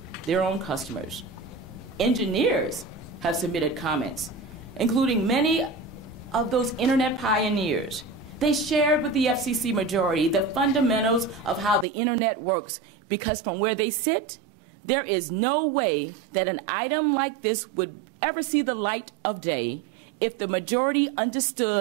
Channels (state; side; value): drops out; left; at 11.9 s